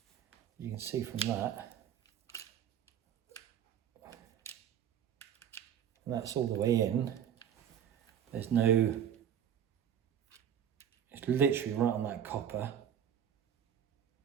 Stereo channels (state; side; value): quieter; left; 9.2 dB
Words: You can see from that, and that's all the way in. There's no, it's literally right on that copper.